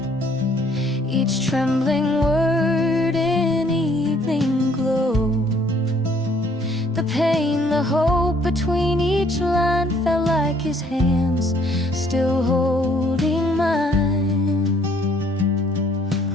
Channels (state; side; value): normal; both; correlation 0.63